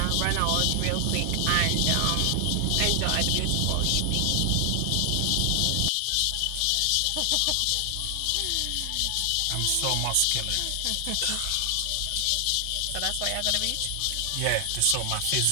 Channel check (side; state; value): both; different; correlation 0.00